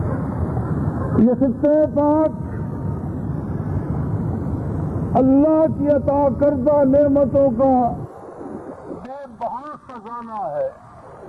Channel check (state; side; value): identical; both; correlation 1.00